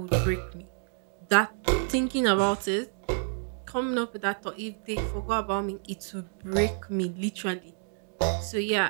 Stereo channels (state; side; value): silent; left; digital silence